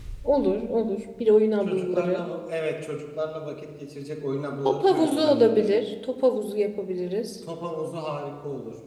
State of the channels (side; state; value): both; identical; correlation 1.00